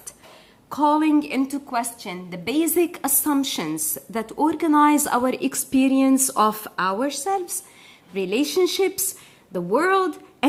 calling into question the basic assumptions that organize our experience of ourselves, relationships, the world,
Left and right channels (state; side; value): identical; both; correlation 1.00